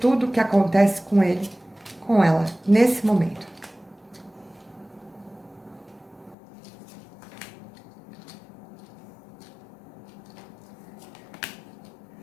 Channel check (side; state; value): right; drops out; at 6.4 s